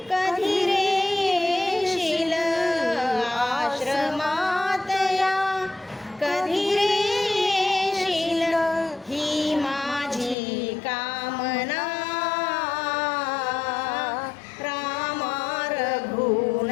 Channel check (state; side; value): drops out; right; at 10.4 s